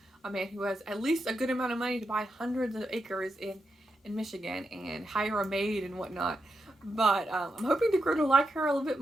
a man who has at least a good amount of money to buy hundreds of acres in Michigan and hire a maid and whatnot. But I'm hoping to grow to like her a little bit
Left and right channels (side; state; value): both; normal; correlation 0.86